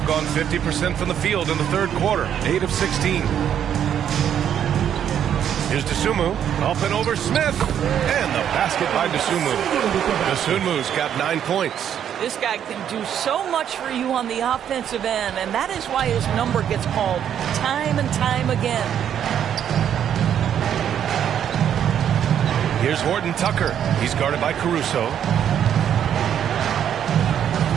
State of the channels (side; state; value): left; quieter; 9.4 dB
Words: gone 50% from the field in the third quarter. 8 of 16. Here's Dosunmu. Up and over Smith. And the basket by Dosunmu. Dosunmu's got 9 points. This guy can do so much for you on the offensive end, and that is why his number gets called time and time again. Here's Horton Tucker. He's guarded by Caruso.